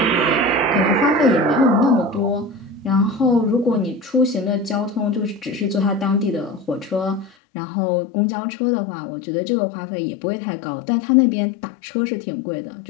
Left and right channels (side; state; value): right; drops out; at 7.3 s